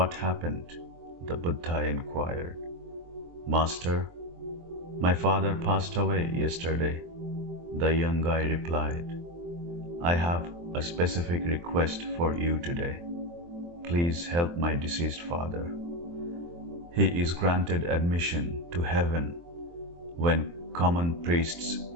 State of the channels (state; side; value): late; left; 23 ms